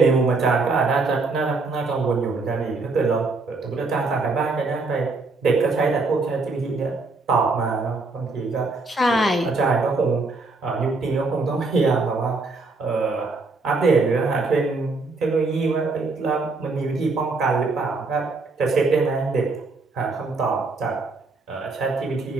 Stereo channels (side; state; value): left; quieter; 3.7 dB